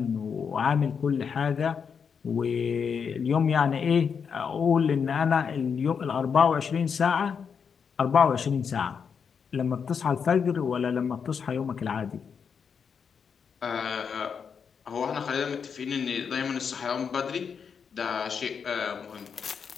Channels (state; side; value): quieter; right; 6.5 dB